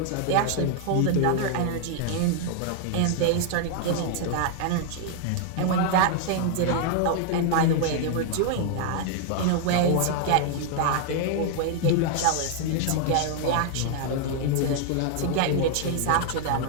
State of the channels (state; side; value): different; both; correlation 0.00